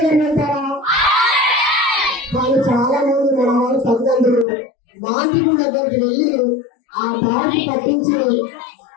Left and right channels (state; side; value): drops out; right; at 4.5 s